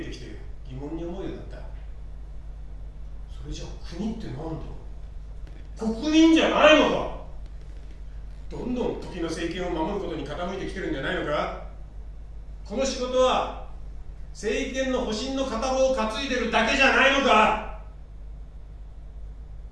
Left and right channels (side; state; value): both; identical; correlation 1.00